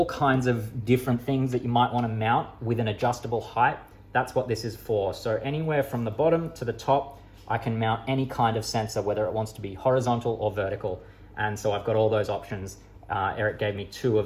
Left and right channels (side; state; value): both; identical; correlation 1.00